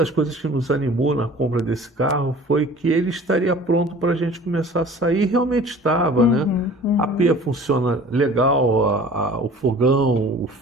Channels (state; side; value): normal; both; correlation 0.46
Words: coisas que nos animou na compra desse carro foi que ele estaria pronto para a gente começar a sair. E realmente estava, né? A pia funciona legal, o fogão, o